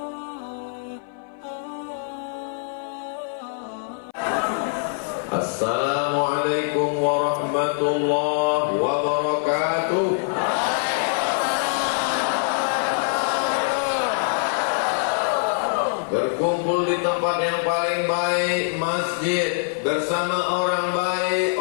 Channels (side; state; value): right; silent; 57 dB below the other